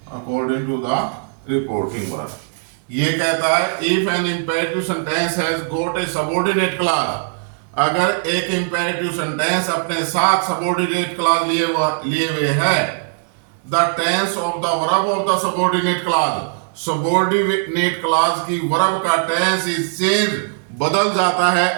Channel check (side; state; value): left; silent; digital silence